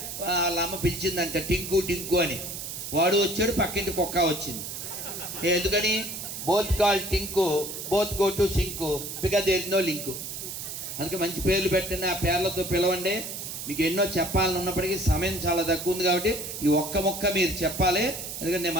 వాళ్ళ అమ్మ పిలిచిందంట టింకు టింకు అని. వాడు వచ్చాడు, పక్కింటి కుక్క వచ్చింది. ఎందుకని? Both call Tinku, both go to sink, because there is no link. అందుకే మంచి పేర్లు పెట్టండి, ఆ పేర్లతో పిలవండి. మీకు ఎన్నో చెప్పాలని ఉన్నప్పటికీ సమయం చాలా తక్కువ ఉంది కాబట్టి ఈ ఒక్క మొక్క మీరు చెప్పాలి. ఎందుకంటే నేను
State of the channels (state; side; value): noise; right; hiss, 7 dB below the sound